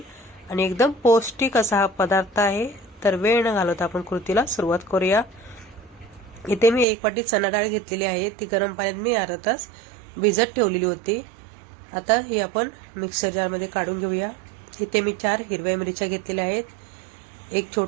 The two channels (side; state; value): left; drops out; at 6.9 s